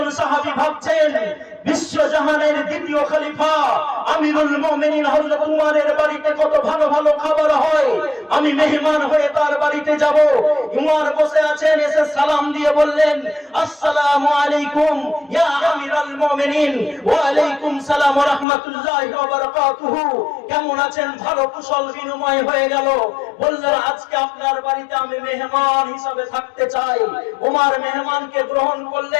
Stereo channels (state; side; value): drops out; right; at 18.4 s